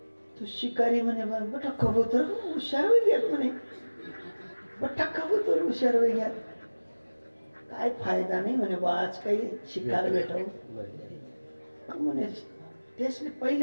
तो शिकारी म्हणे बटा कबूतर हुशार होई गयात म्हणे. बटा कबूतर हुशार होई गयात. काय फायदा नाही म्हणे बा आज काही शिकार भेटव म्हणे. त्यासले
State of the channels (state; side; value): inverted; both; correlation -1.00